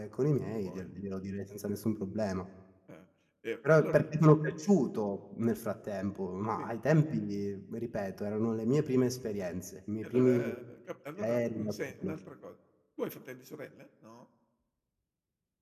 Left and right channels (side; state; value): both; identical; correlation 1.00